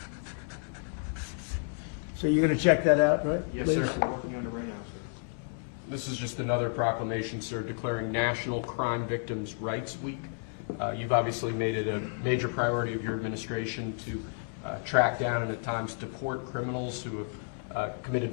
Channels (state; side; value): silent; right; 57 dB below the other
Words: So you're going to check that out, right? Yes, please? sir. We're working on it right now, sir. This is just another proclamation, sir, declaring National Crime Victims' Rights Week. You've obviously made it a major priority of your administration to track down and at times deport criminals who have committed